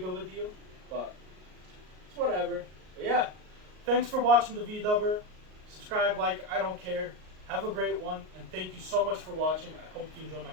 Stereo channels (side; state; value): left; late; 38 ms